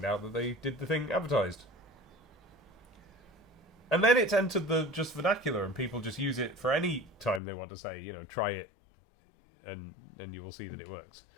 out that they did the thing advertised. And then it's entered the just vernacular, and people just use it for any time they want to say, try it, and you will see that it works.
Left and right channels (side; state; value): right; drops out; at 7.4 s